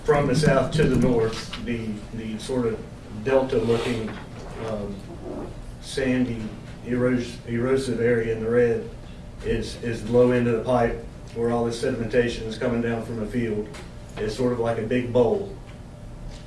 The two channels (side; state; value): both; identical; correlation 1.00